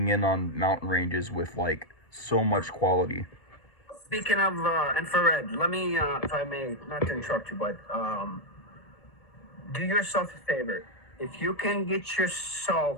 in on mountain ranges with like so much quality. Speaking of infrared, let me, if I may, not to interrupt you, but do yourself a favor. If you can get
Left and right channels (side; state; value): right; late; 1.7 ms